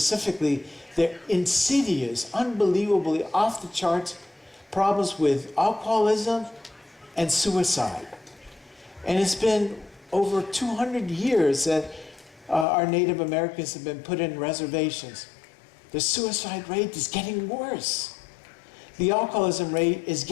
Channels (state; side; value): drops out; right; at 12.7 s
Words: their insidious, unbelievably off the charts problems with alcoholism and suicide. And it's been over 200 years that our Native Americans have been put in reservations. The suicide rate is getting worse. The alcoholism rate is